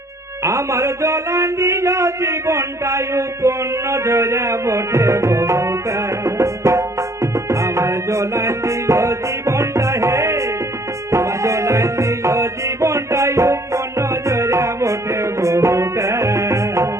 আমার জ্বলান দিল জীবনটাই উপন্ন জয়রা বটে বহুটা আমার জ্বলান দিল জীবনটা হে আমার জ্বলান দিল জীবনটাই উপন্ন জয়রা বটে বহুটা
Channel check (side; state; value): left; late; 0.14 ms